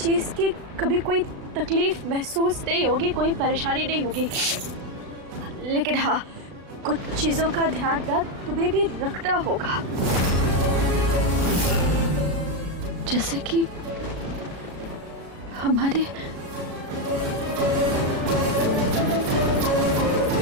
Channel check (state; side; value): late; left; 36 ms